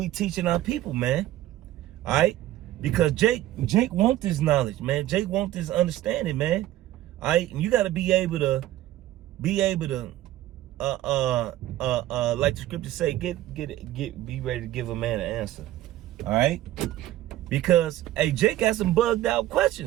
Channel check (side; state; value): left; quieter; 14.6 dB